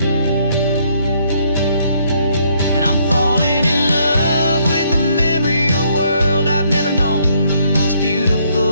And I'm falling in love with the memory of a world I've never known, the most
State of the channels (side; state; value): both; inverted; correlation -0.69